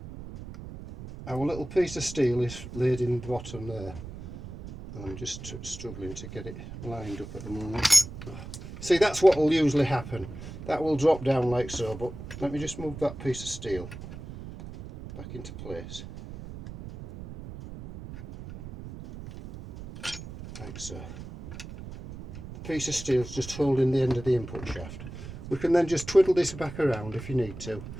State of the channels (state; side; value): noise; right; rumble, 12 dB below the sound